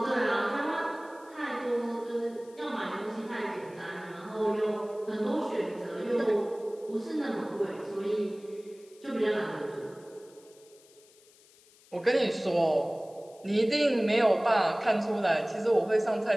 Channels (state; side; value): noise; left; hiss, 27 dB below the sound